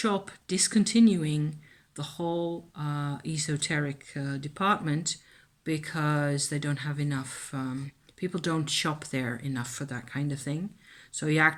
discontinuing the whole esoteric department because they don't have enough, people don't shop there enough for that kind of thing. So he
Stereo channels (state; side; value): identical; both; correlation 1.00